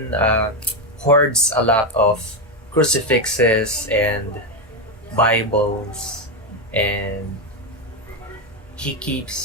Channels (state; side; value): normal; both; correlation 0.09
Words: hoards a lot of crucifixes and Bibles, and he